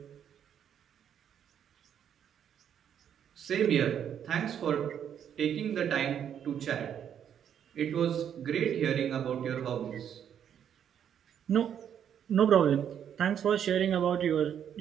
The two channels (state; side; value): quieter; left; 9.0 dB